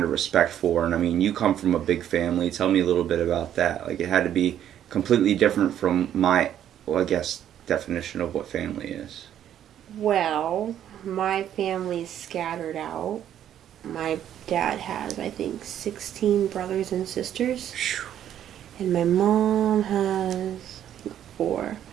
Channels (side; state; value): left; quieter; 10.6 dB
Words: a respect for. And, I mean, you come from a big family. Tell me a little bit about that. Like, it had to be completely different from my, well, I guess, definition of what family is. Well, my family's scattered out. My dad has, I think, 16 brothers and sisters. And my mom has, I think, 4.